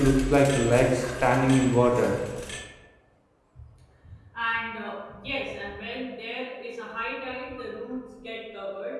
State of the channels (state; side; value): identical; both; correlation 1.00